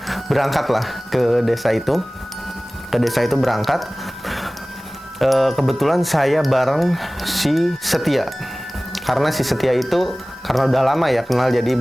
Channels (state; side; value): normal; both; correlation 0.98